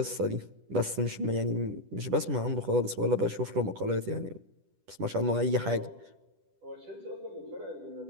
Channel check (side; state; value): left; late; 10 ms